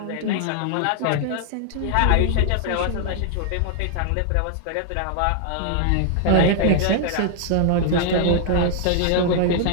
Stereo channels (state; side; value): different; both; correlation -0.01